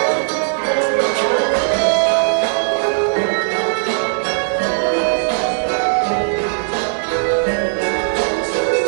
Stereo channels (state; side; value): silent; left; 66 dB below the other